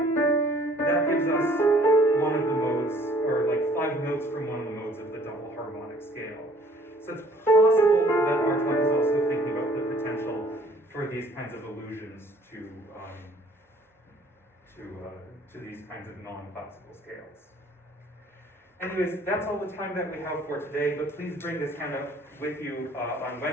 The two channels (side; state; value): both; normal; correlation 0.57